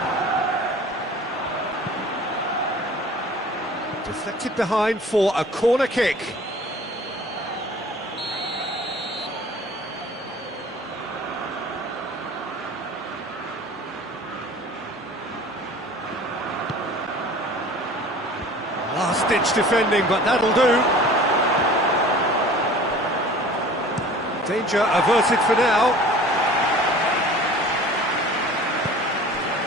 Deflected behind for a corner kick. Last-ditch defending, but that'll do. Danger averted for now.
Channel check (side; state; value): both; normal; correlation 0.45